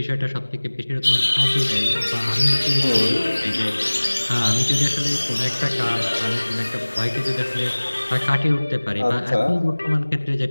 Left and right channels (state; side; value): inverted; both; correlation -1.00